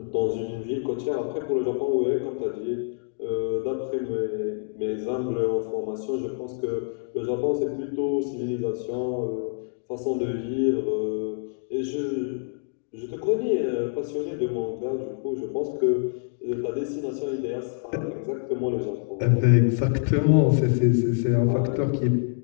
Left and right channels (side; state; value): right; silent; digital silence